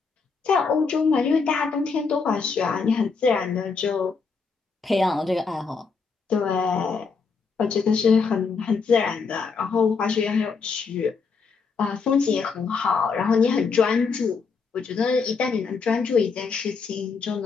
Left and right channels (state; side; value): quieter; right; 5.1 dB